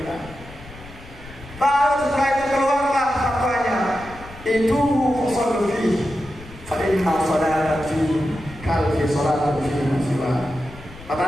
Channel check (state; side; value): noise; left; rumble, 18 dB below the sound